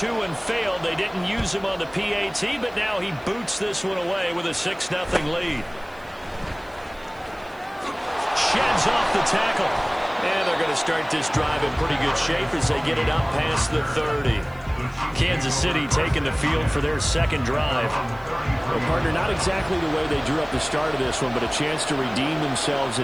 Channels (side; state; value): right; noise; hiss, 29 dB below the sound